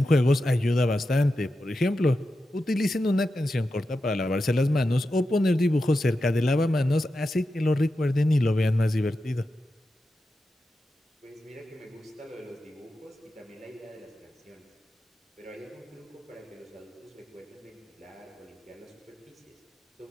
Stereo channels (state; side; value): normal; both; correlation 0.90